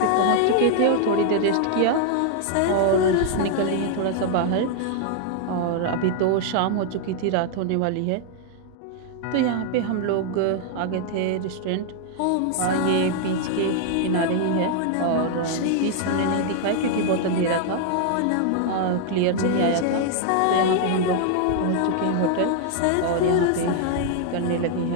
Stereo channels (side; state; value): both; different; correlation 0.00